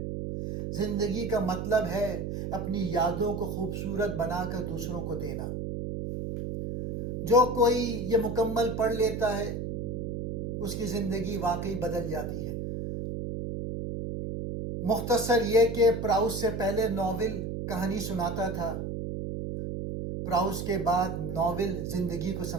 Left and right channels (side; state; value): right; noise; hum, 4 dB below the sound